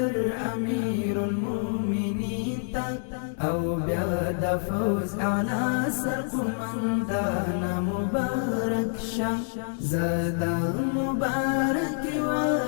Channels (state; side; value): silent; right; digital silence